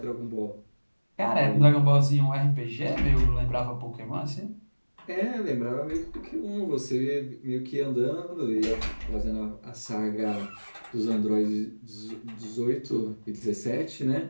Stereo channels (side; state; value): both; inverted; correlation -1.00